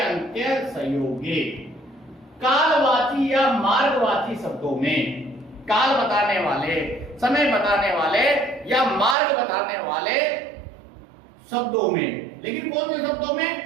संयोगे, कालवाची या मार्गवाची शब्दों में, काल बताने वाले, समय बताने वाले या मार्ग बताने वाले शब्दों में, लेकिन कौन से शब्दों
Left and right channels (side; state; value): left; drops out; at 9.2 s